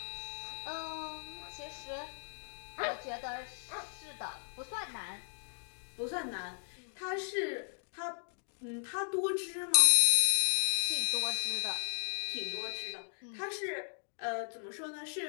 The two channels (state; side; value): silent; right; digital silence